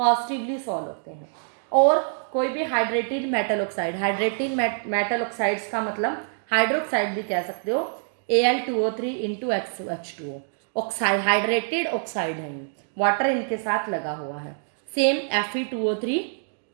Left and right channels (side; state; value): left; silent; digital silence